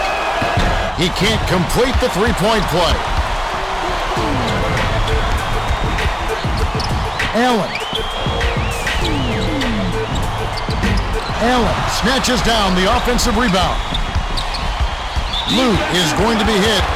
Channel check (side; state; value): both; identical; correlation 1.00